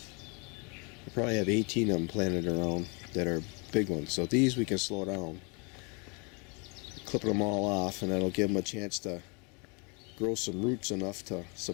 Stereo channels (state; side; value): quieter; right; 32.3 dB